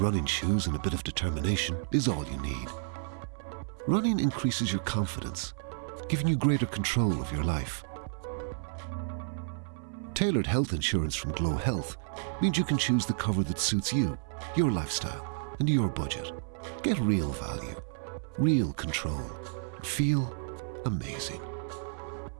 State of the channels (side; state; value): left; silent; 57 dB below the other